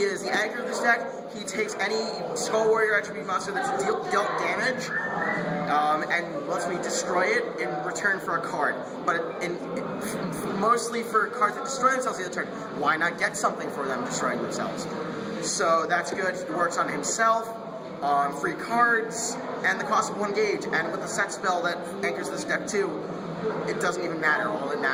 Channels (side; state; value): both; identical; correlation 1.00